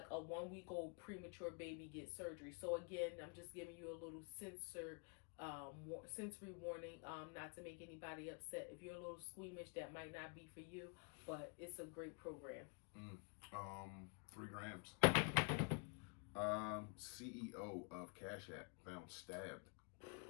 a 1-week-old premature baby, get surgery. So again, I'm just giving you a little sensory warning, not to make anybody upset. If you're a little squeamish, that might not be for you, but it's a great program. 3 grams. CEO of Cash App found stabbed,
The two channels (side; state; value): right; quieter; 35.2 dB